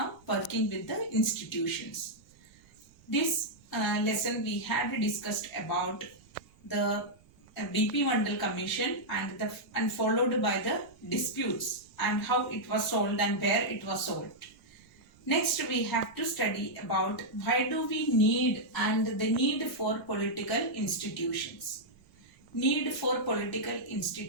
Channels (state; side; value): noise; right; rumble, 28 dB below the sound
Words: Working with the institutions. This lesson we had discussed about the BP Mandal Commission and followed by the disputes and how it was solved and where it was solved. Next we have to study about why do we need and the need for political institutions. Need for political